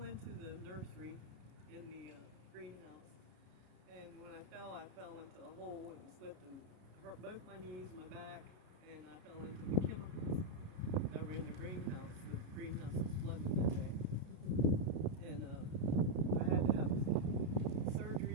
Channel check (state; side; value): late; left; 32 ms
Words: nursery in the greenhouse. And when I fell into a hole and slipped and hurt both my knees, my back, and I fell into the chemicals that were in the greenhouse. The greenhouse was flooded that day. And I had to have